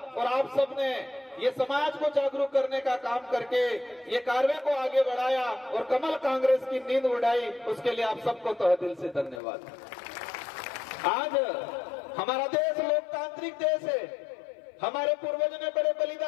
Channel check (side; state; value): right; drops out; at 9.4 s